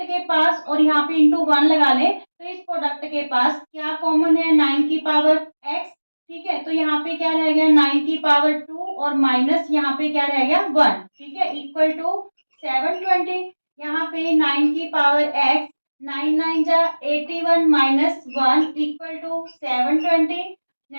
के पास और यहाँ पे इंटू 1 लगा ले, तो इस प्रोडक्ट के पास क्या कॉमन है, 9 की पावर x, ठीक है। तो यहाँ पे क्या रह गया, 9 की पावर 2 और माइनस यहाँ पे क्या रह गया 1, ठीक है, इक्वल टू 720। यहाँ पे 9 की पावर x, 9 9 जा 81 माइनस 1 इक्वल टू 720।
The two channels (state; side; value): inverted; both; correlation -1.00